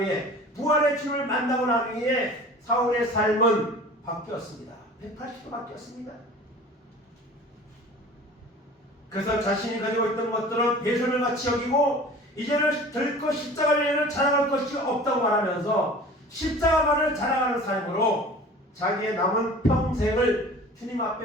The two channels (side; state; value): both; normal; correlation 0.42